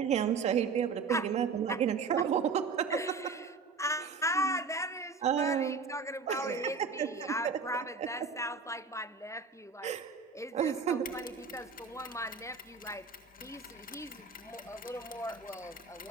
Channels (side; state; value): left; quieter; 4.8 dB